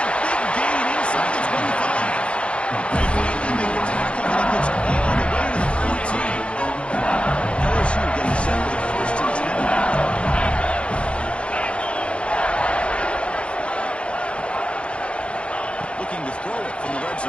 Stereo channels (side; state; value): right; late; 0.059 ms